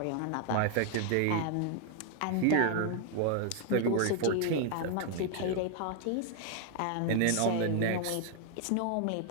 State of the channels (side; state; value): both; different; correlation 0.00